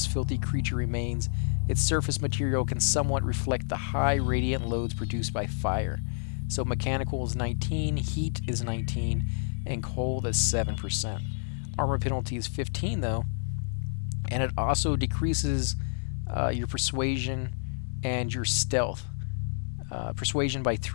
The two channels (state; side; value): silent; right; 59 dB below the other